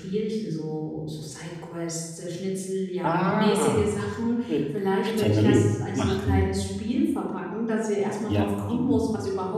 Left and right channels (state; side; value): identical; both; correlation 1.00